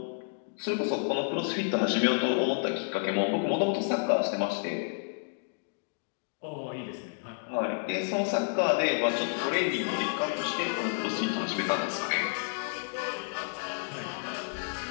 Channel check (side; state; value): right; silent; digital silence